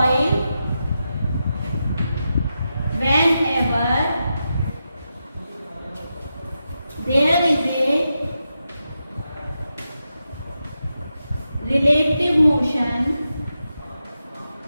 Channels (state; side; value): inverted; both; correlation -0.88